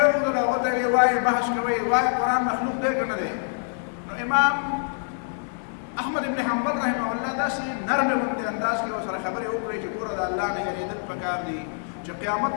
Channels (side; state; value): right; silent; digital silence